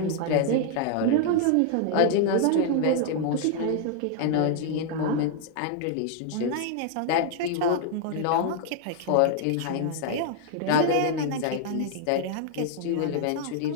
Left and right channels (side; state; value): both; different; correlation 0.00